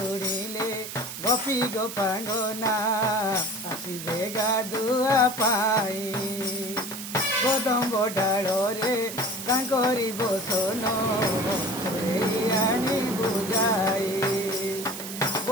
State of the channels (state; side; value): noise; right; hiss, 9 dB below the sound